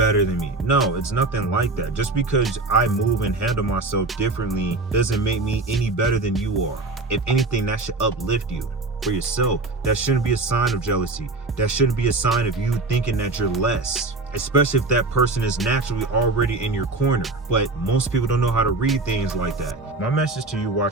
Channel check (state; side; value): quieter; left; 3.3 dB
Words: than me. No, it's nothing like that. Just because I move and handle myself differently doesn't make me any better than you are. If anything, that should uplift you for yourself. That shouldn't be a sign of jealousy. That shouldn't be a sign of you thinking that you're less. especially if that person is naturally already in your corner. But most people don't know how to read things like that. My message to you